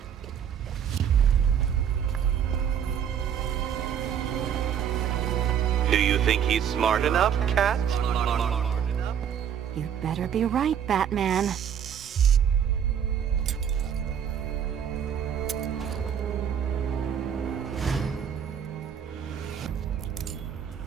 Do you think he's smart enough, Cat? You'd better be right, Batman.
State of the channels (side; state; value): left; quieter; 8.6 dB